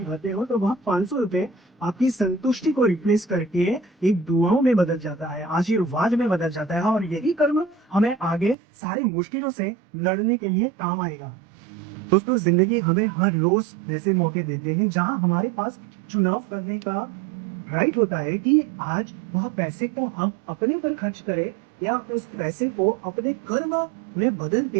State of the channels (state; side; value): drops out; left; at 8.6 s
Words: भरते हो, तो वह 500 रुपए आपकी संतुष्टि को रिप्लेस करके एक दुआओं में बदल जाता है, आशीर्वाद में बदल जाता है, और यही कर्म हमें आगे सारी मुश्किलों से लड़ने के लिए काम आएगा। दोस्तों, जिंदगी हमें हर रोज ऐसे मौके देते हैं जहां हमारे पास चुनाव करने का राइट होता है कि आज वह पैसे को हम अपने पर खर्च करें या उस पैसे को अपने कर्म में बदल